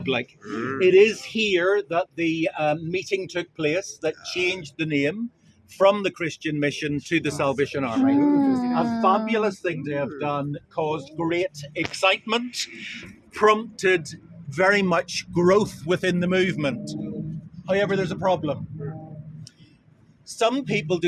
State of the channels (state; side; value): identical; both; correlation 1.00